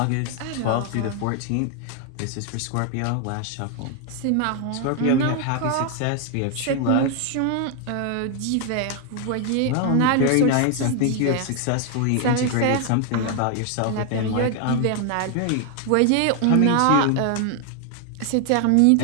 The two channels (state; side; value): different; both; correlation 0.00